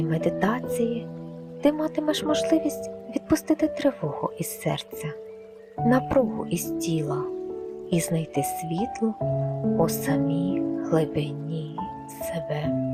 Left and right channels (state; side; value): identical; both; correlation 1.00